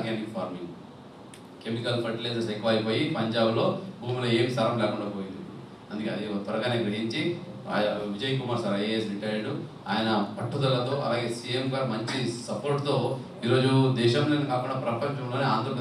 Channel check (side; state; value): both; identical; correlation 1.00